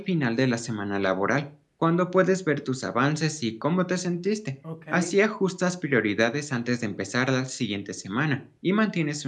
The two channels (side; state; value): both; identical; correlation 1.00